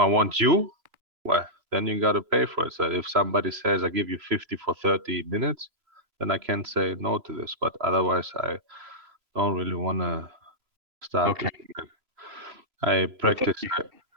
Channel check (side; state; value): left; late; 3.0 ms